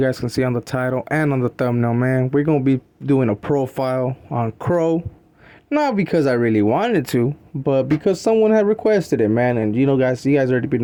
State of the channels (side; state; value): both; identical; correlation 1.00